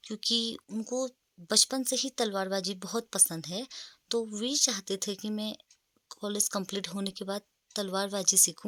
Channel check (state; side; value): identical; both; correlation 1.00